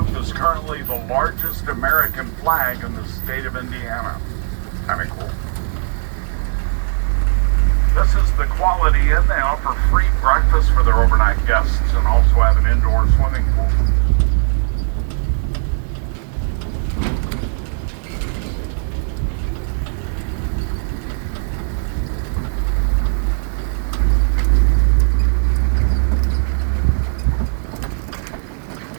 is currently the largest American flag in the state of Indiana. Kind of cool. This is the Quality Inn. They offer free breakfast for their overnight guests and also have an indoor swimming pool.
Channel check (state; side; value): silent; left; digital silence